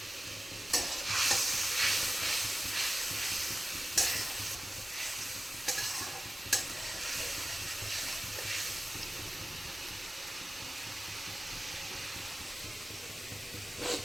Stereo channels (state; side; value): normal; both; correlation 0.95